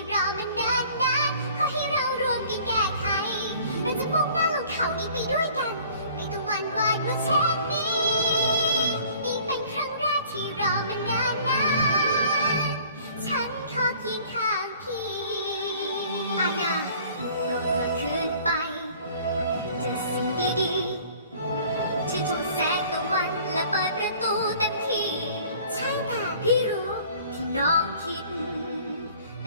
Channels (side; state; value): both; inverted; correlation -0.52